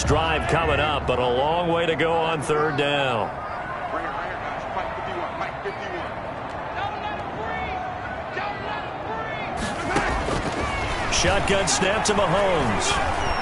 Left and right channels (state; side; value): identical; both; correlation 1.00